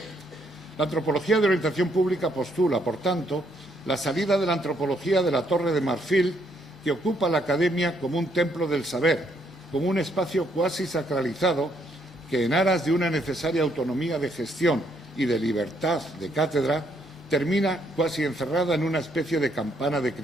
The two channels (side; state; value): both; normal; correlation 0.72